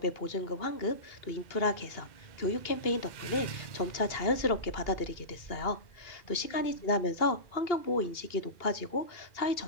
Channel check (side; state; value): right; late; 2.8 ms